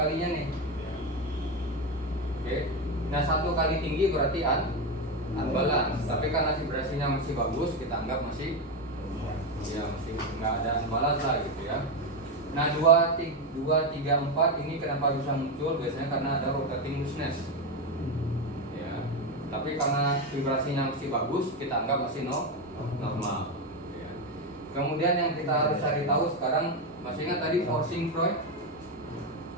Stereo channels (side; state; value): both; normal; correlation 0.12